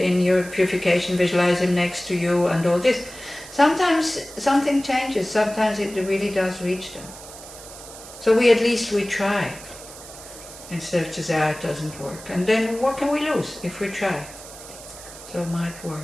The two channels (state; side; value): noise; right; hiss, 16 dB below the sound